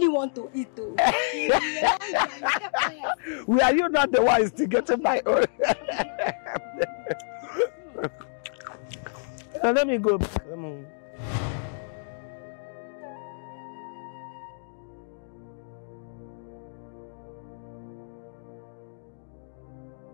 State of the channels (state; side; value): silent; right; digital silence